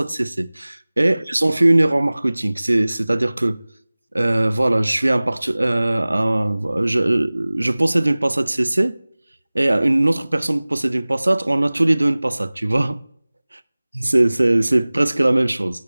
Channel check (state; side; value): inverted; both; correlation -0.99